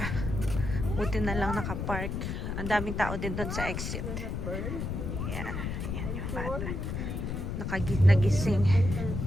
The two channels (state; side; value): noise; left; rumble, 3 dB below the sound